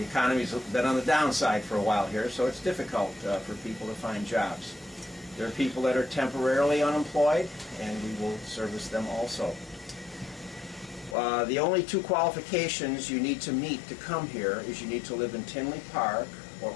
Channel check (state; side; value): drops out; right; at 11.2 s